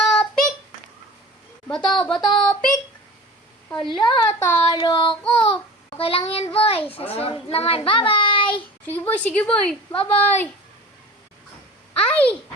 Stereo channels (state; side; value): normal; both; correlation 0.39